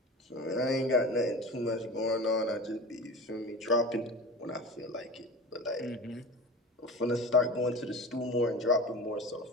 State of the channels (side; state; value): both; normal; correlation 0.33